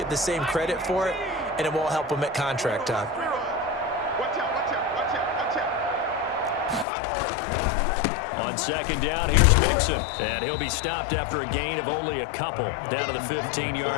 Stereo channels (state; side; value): drops out; right; at 6.9 s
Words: the same credit for it, and it won't help them at contract time. On second down, here's Mixon. And he'll be stopped after a gain of only a couple down to the